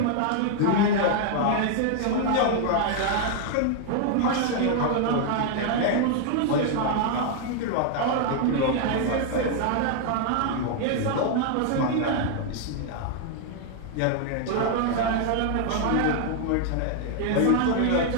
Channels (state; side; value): different; both; correlation 0.00